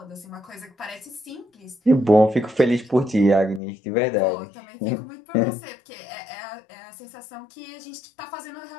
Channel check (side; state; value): right; drops out; at 3.6 s